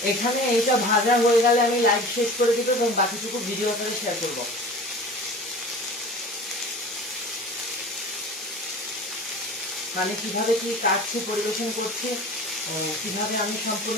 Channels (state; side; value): normal; both; correlation 0.39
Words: এখানে এইটা ভাজা হয়ে গেলে আমি লাইভ শেষ করে দিব এবং বাকিটুকু ভিডিও আকারে শেয়ার করব। মানে কিভাবে কি কাটছে, পরিবেশন করছে, কিভাবে আমি